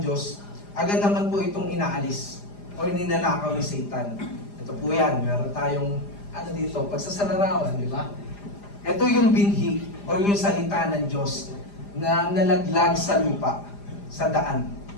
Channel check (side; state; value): right; late; 4.9 ms